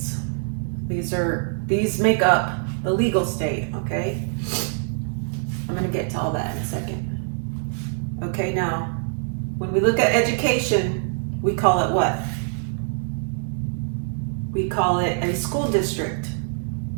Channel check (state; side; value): silent; left; 63 dB below the other